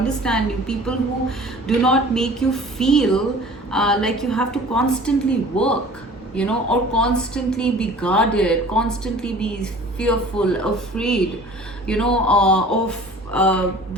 you, people who do not make you feel like you have to constantly work, or constantly be guarded, constantly be fearful, afraid, of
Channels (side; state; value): both; normal; correlation 0.46